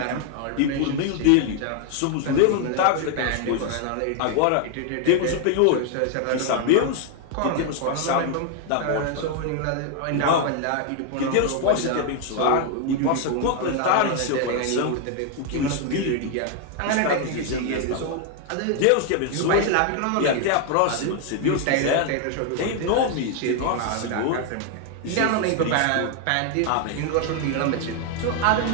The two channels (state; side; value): different; both; correlation 0.00